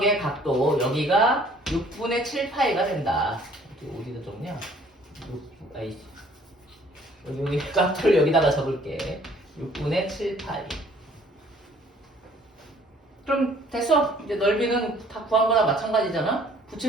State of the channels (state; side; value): normal; both; correlation 0.57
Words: 각도 여기가 6분의 7파이가 된다. 어디다 적냐? 여기 각도를 여기다가 적을게. 6분의 7파이. 그럼 됐어. 이제 넓이는 다 구한 거나 마찬가지잖아.